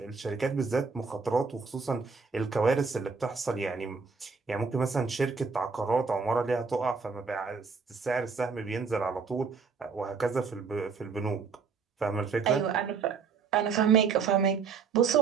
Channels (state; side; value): quieter; left; 5.3 dB